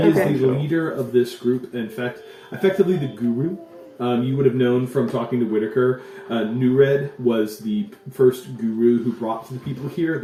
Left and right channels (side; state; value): both; identical; correlation 1.00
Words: is the leader of this group. In fact, effectively the guru. You would have known from talking to Whitaker. Nured was the first guru who brought the people here.